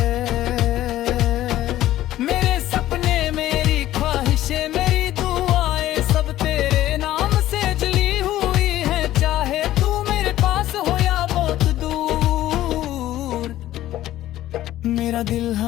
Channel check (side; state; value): right; quieter; 14.1 dB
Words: मेरे सपने मेरी ख्वाहिशें मेरी दुआएं सब तेरे नाम से जली हुई हैं, चाहे तू मेरे पास हो या बहुत दूर। मेरा दिल